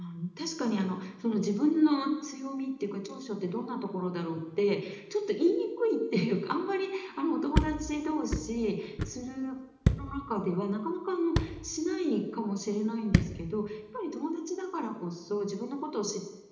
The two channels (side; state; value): both; identical; correlation 1.00